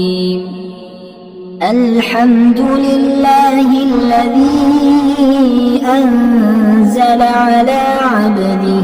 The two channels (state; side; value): identical; both; correlation 1.00